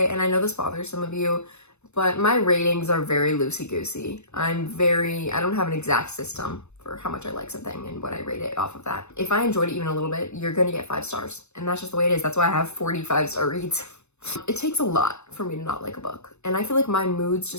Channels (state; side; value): late; right; 0.81 ms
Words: And I know this bothers some of you, but my ratings are very loosey-goosey. I don't have an exact system for how much I like something and what I rate it off of that. If I enjoyed it even a little bit, you're gonna get 5 stars. And that's just the way it is. That's why I have 45-star reads. It takes a lot for me to not like a book. And I feel like my moods